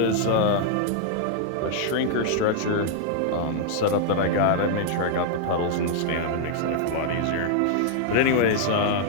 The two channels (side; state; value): both; different; correlation -0.01